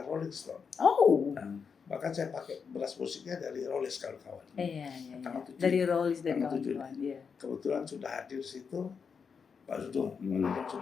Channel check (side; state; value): right; quieter; 6.0 dB